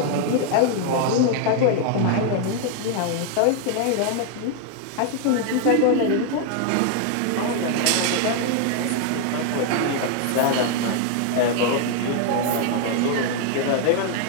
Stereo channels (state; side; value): different; both; correlation 0.00